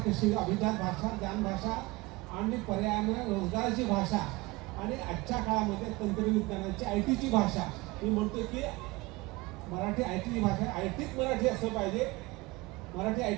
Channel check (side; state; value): left; quieter; 22.5 dB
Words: कशी, अभिजात भाषा, ज्ञानभाषा आणि पर्यायानं रोजगाराची भाषा आणि आजच्या काळामध्ये तंत्रविज्ञानाची IT ची भाषा. मी म्हणतो की मराठी IT ची भाषा, ITत मराठी असलं पाहिजे, मराठी